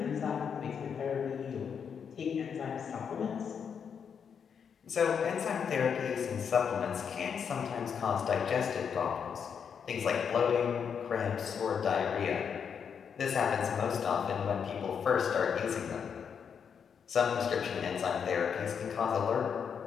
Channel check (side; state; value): right; quieter; 7.0 dB